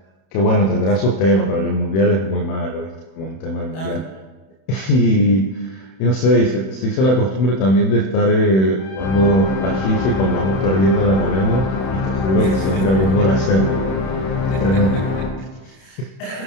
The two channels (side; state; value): right; late; 31 ms